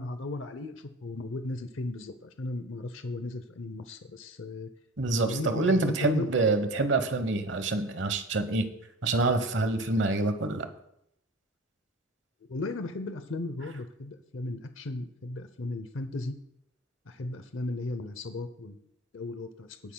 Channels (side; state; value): both; normal; correlation 0.39